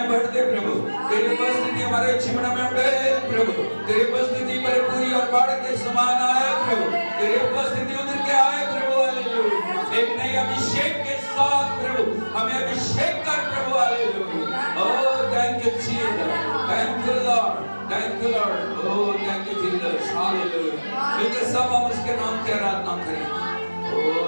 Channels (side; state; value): both; inverted; correlation -1.00